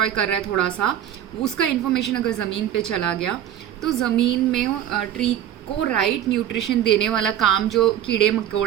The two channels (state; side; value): quieter; left; 10.9 dB